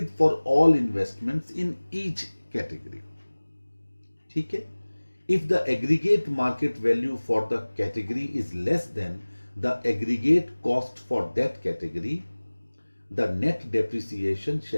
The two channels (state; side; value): inverted; both; correlation -1.00